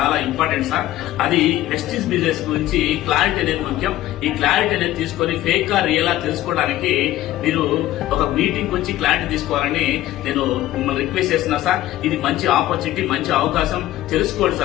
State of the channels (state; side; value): quieter; right; 14.8 dB